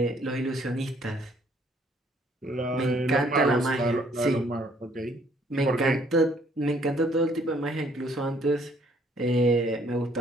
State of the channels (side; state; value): both; normal; correlation 0.63